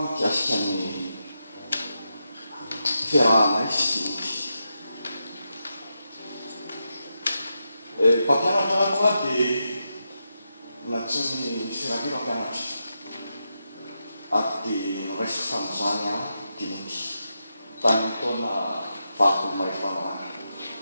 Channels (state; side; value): inverted; both; correlation -0.87